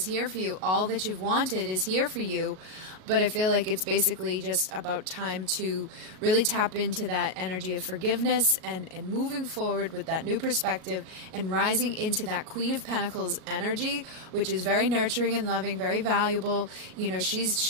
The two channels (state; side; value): late; left; 38 ms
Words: here for you. All that you've wanted is here for you. But I feel like it's basically just about time to really tap into that energy of forgiveness and moving forward with that new perspective and rising into that Queen of Pentacles energy, which is very nurturing and loving, very valuable. You know,